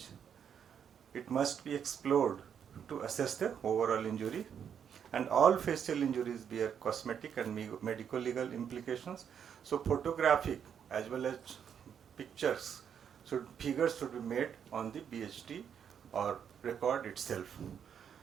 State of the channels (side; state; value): left; quieter; 8.1 dB